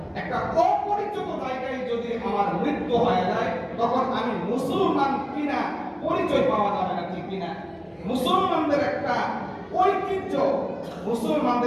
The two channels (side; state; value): both; identical; correlation 1.00